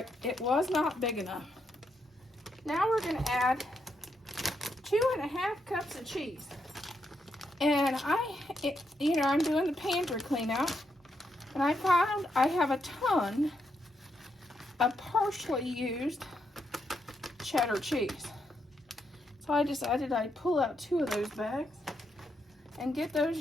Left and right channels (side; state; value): both; normal; correlation 0.80